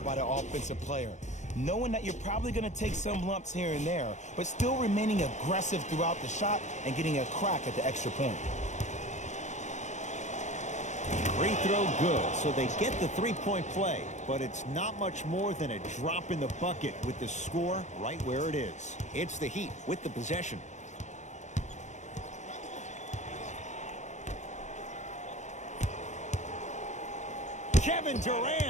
by the offensive player. Knowing that you're probably going to take some lumps here and there, but still remaining aggressive throughout the shot and getting a crack at the extra point. Free throw good, so they get the three-point play, but it's not much more than a drop in the bucket with the score right where it is. It's the Heat with the possession. Kevin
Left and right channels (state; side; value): late; right; 0.34 ms